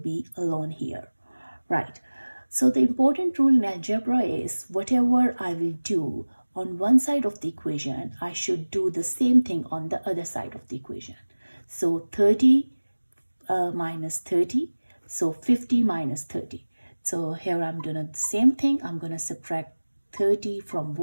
alone here. Right. So the important rule in algebra is whatever I will do on one side of the equation, I should do the same thing on the other side of the equation. So 30 minus 30. So 50 minus 30. So here I'm doing the same thing. I'm going to subtract 30 from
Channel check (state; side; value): inverted; both; correlation -1.00